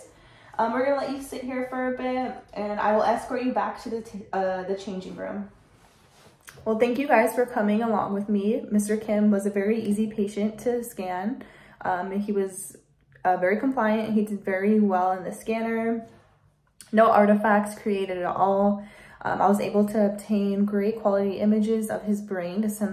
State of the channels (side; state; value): both; identical; correlation 1.00